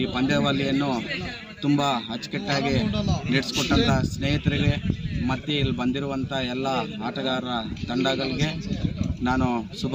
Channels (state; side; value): identical; both; correlation 1.00